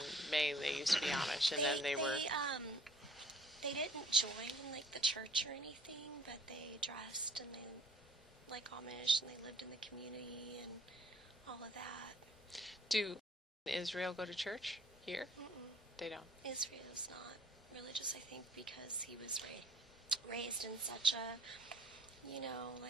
Maine. They used to be Amish, and then they were. They didn't join like the church or anything, but they dressed and they like Amish, and they lived in the community and all of that. Do Israel go to church here? Mm-mm. They don't. Israel's not religious, I think, because he was raised in such a,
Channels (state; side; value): normal; both; correlation 0.56